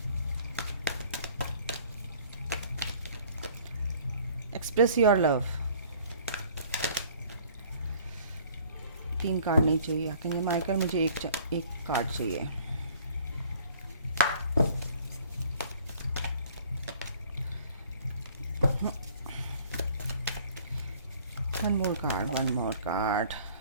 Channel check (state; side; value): inverted; both; correlation -0.53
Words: Express your love. 3 card नहीं चाहिए क्योंकि माइकल, मुझे एक कार्ड चाहिए। One more card.